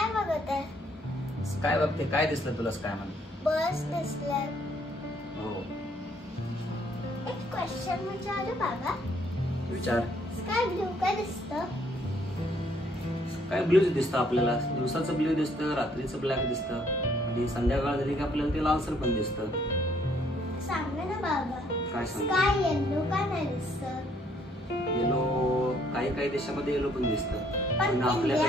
बघत आहे. स्काय बघते. काय दिसलं तुला स्काय मध्ये? बस दिसलं. हो. एक क्वेश्चन विचारू बाबा. विचार. स्काय ब्लू काय दिसतं? स्काय ब्लूच दिसतं आपल्याला. दिवसाचं ब्ल्यू दिसतं, रात्रीचं ब्लॅक दिसतं आणि संध्याकाळ झाली की आपल्याला ते लालसर पण दिसतं. सांग ना बाबा. काय सांग? स्काय येलो का नाही दिसतं? येलो काही देशामध्ये येलो पण दिसतं, पण पण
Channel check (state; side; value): normal; both; correlation 0.66